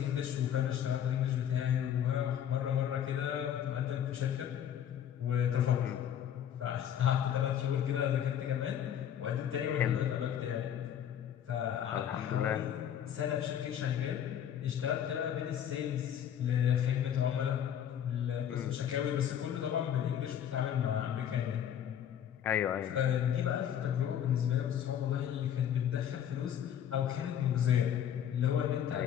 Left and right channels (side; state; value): right; quieter; 9.6 dB